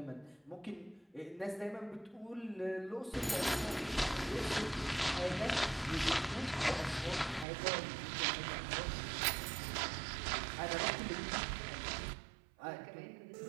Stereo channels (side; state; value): left; drops out; at 7.5 s